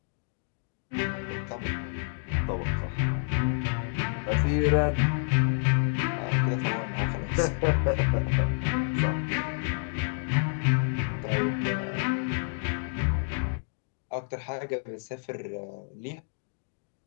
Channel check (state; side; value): silent; right; digital silence